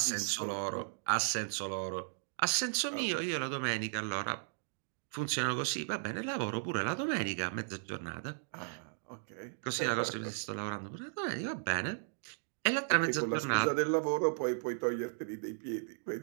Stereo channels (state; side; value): silent; left; digital silence